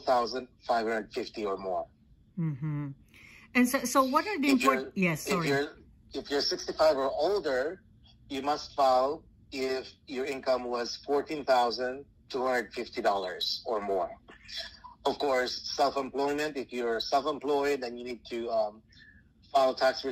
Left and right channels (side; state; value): both; identical; correlation 1.00